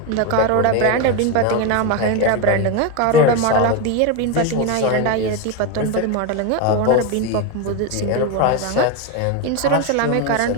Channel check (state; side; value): different; both; correlation 0.03